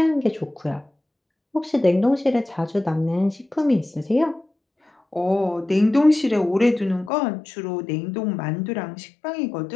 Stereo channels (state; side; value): drops out; right; at 7.1 s